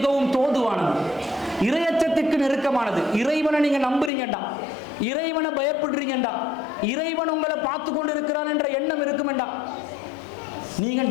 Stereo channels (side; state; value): right; drops out; at 4.1 s